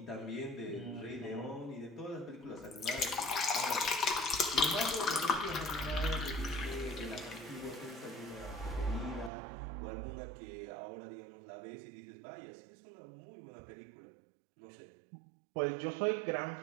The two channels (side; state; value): left; drops out; at 9.3 s